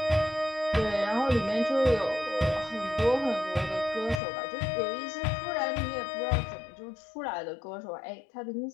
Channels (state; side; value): drops out; right; at 4.2 s